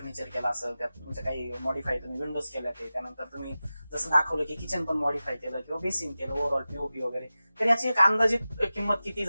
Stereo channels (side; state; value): both; inverted; correlation -0.95